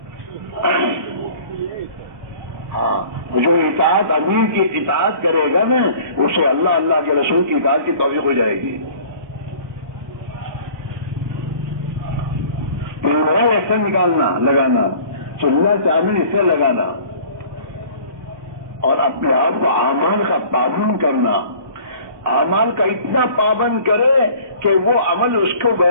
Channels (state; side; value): late; left; 1.2 ms